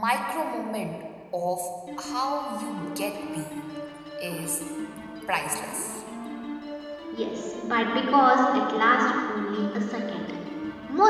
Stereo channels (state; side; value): identical; both; correlation 1.00